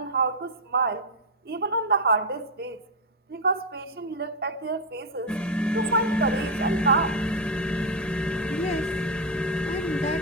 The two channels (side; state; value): both; normal; correlation 0.04